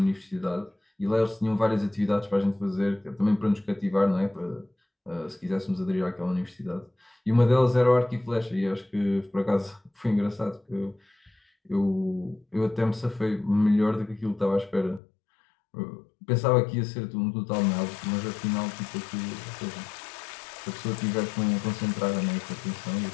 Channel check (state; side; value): drops out; right; at 15.0 s